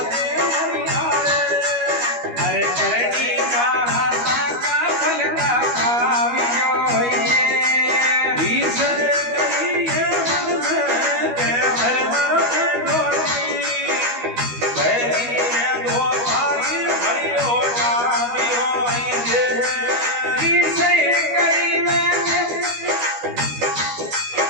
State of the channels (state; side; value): late; left; 12 ms